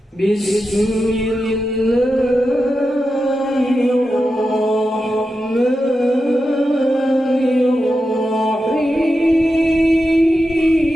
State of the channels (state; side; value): normal; both; correlation 0.90